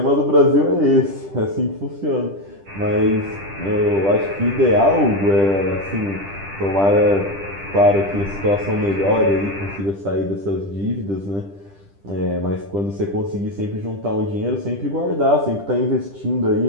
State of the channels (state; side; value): late; left; 10 ms